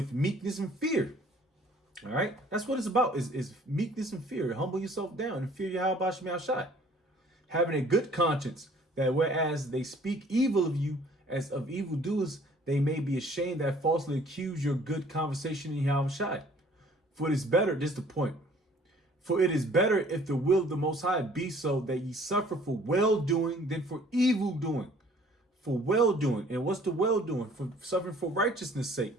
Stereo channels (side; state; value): both; normal; correlation 0.55